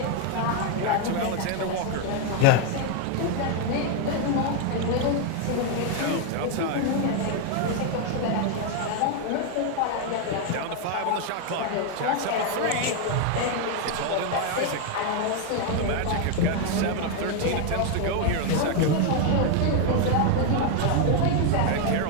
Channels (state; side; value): different; both; correlation 0.01